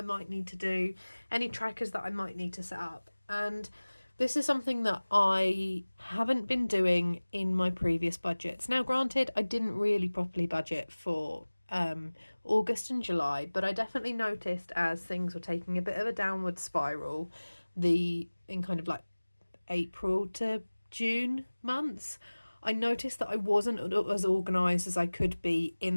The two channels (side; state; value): both; inverted; correlation -1.00